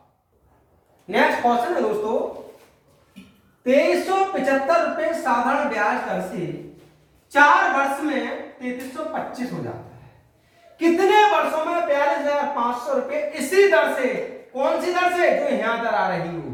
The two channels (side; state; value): both; identical; correlation 1.00